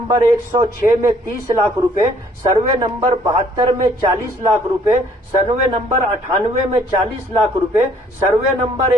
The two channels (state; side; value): normal; both; correlation 0.62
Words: 106 में 30 लाख रुपए, सर्वे नंबर 72 में 40 लाख रुपए, सर्वे नंबर 98 में 40 लाख रुपए, सर्वे नंबर